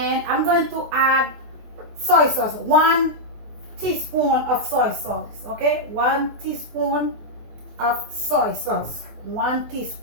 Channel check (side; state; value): left; late; 24 ms